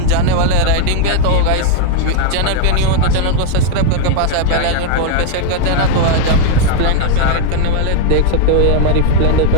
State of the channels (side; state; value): both; different; correlation -0.01